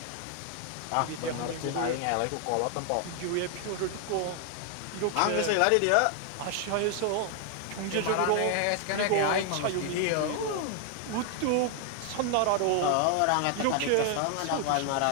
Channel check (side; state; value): both; different; correlation 0.00